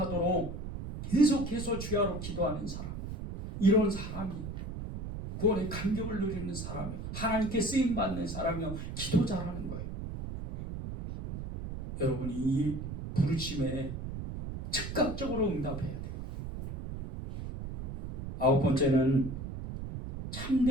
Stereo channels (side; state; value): right; noise; rumble, 7 dB below the sound